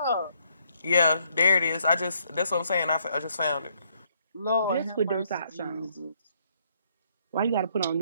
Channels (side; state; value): both; inverted; correlation -0.70